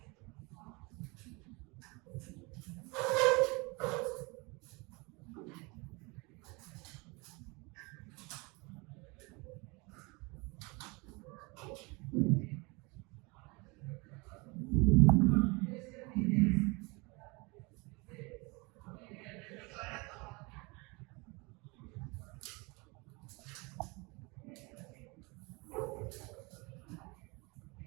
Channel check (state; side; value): quieter; left; 27.3 dB